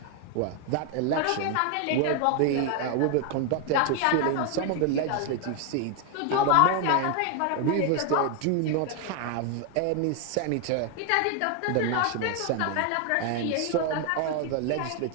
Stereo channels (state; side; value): different; both; correlation 0.01